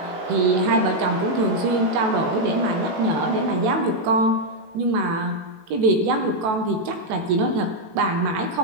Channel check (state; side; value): late; left; 18 ms